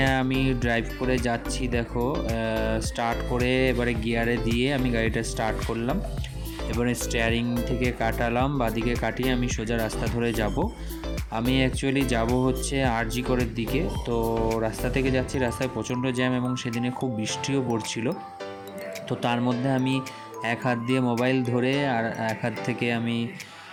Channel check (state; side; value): identical; both; correlation 1.00